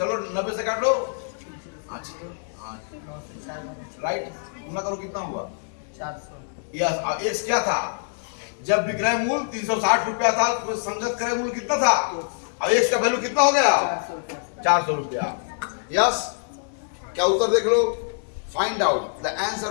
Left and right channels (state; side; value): silent; right; digital silence